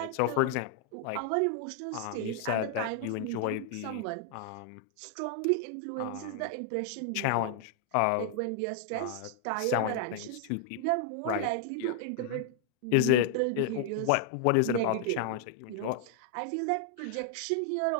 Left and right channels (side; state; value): both; different; correlation 0.00